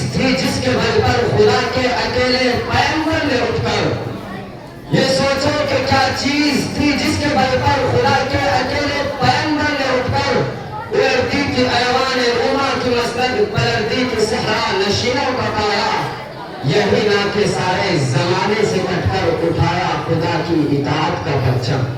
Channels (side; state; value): both; identical; correlation 1.00